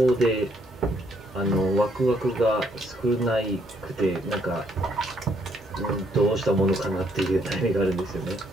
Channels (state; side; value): normal; both; correlation 0.71